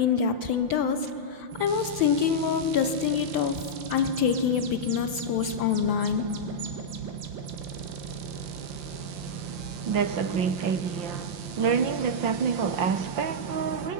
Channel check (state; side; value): late; left; 5.8 ms